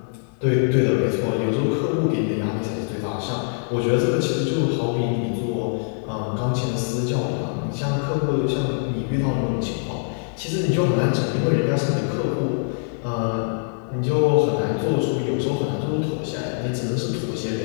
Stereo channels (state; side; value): silent; right; 60 dB below the other